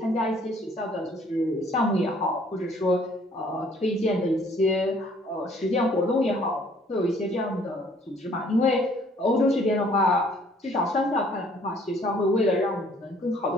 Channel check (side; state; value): both; normal; correlation 0.60